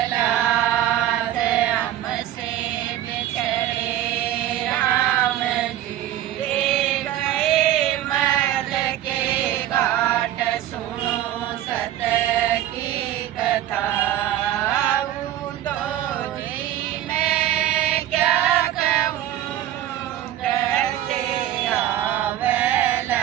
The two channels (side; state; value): left; quieter; 12.6 dB